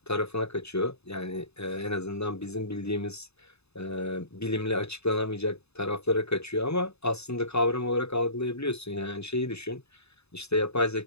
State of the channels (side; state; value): right; late; 0.79 ms